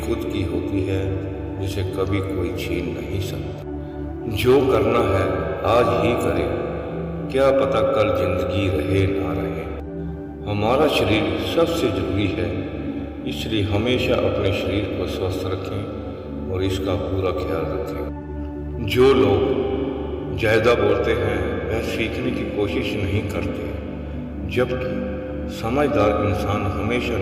खुद की होती है जिसे कभी कोई छीन नहीं सकता। जो करना है आज ही करें, क्या पता कल जिंदगी रहे ना रहे। हमारा शरीर सबसे जरूरी है, इसलिए हमेशा अपने शरीर को स्वस्थ रखें और इसका पूरा ख्याल रखें। जो लोग ज्यादा बोलते हैं वह सीखने की कोशिश नहीं करते, जबकि समझदार इंसान हमेशा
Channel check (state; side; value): identical; both; correlation 1.00